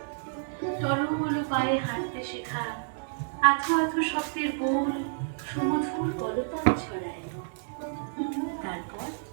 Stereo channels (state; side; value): silent; left; digital silence